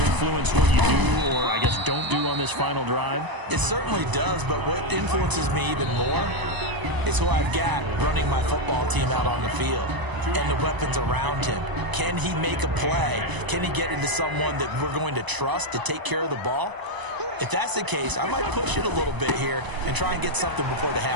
what you do, or I guess don't do on this final drive? It certainly does, but what influences me even more is who I've got running my football team out on the field and the weapons around him. Can he make a play? Can he get into someone that we're going to trust to take care of the ball? If that's the case, I might push it a little bit here and try and get something before the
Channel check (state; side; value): late; left; 1.0 ms